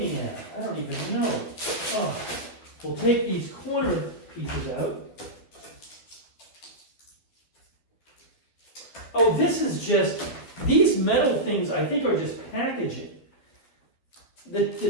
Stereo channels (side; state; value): right; late; 12 ms